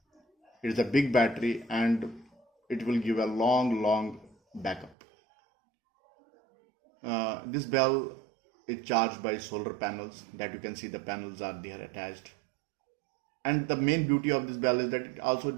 It is a big battery and it will give a long backup. This bell is charged by solar panels, that you can see the panels are there attached. And the main beauty of this bell is that it also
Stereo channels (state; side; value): drops out; left; at 5.0 s